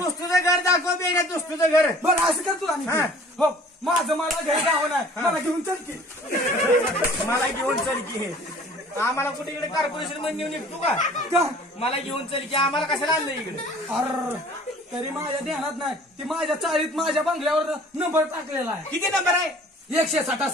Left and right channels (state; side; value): normal; both; correlation 0.50